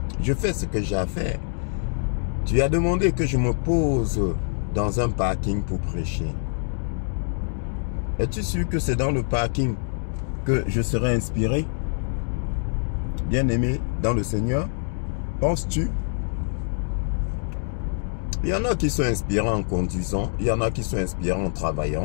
Je fais ce que j'ai à faire. Tu as demandé que je me pose dans un parking pour prêcher. Es-tu sûr que c'est dans le parking que je serai inspiré? Bien-aimé dans le Seigneur, penses-tu? Il y en a qui sont inspirants en conduisant, il y en a qui sont inspirants en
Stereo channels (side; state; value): right; silent; digital silence